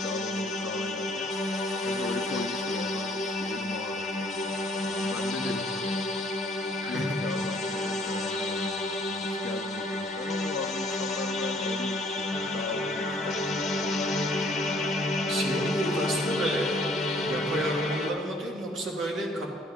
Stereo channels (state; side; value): normal; both; correlation 0.61